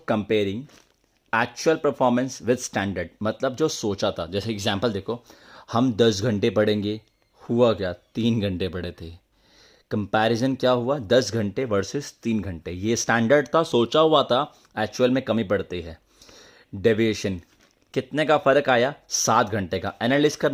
comparing actual performance with standard, मतलब जो सोचा था। जैसे एग्जांपल देखो, हम 10 घंटे पढ़ेंगे, हुआ क्या, 3 घंटे पढ़े थे। कंपैरिजन क्या हुआ, 10 घंटे वर्सेस 3 घंटे, ये स्टैंडर्ड था, सोचा हुआ था, एक्चुअल में कमी पड़ती है। डेविएशन, कितने का फ़र्क आया, 7 घंटे का। एनालिस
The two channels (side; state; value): both; identical; correlation 1.00